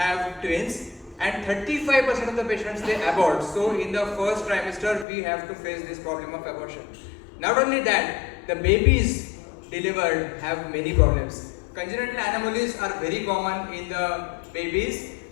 twins, and 35% of the patients they abort. So in the first trimester, we have to face this problem of abortion. Not only that, the babies delivered have many problems. Congenital anomalies are very common in the babies,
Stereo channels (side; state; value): right; drops out; at 5.1 s